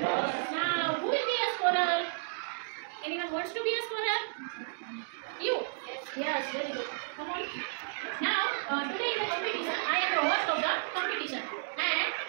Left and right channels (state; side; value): silent; left; digital silence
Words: Now, who will be a scholar? Anyone wants to be a scholar? You? Yes, very good. Come on. Now, today in the competition, I am the host of the competition. And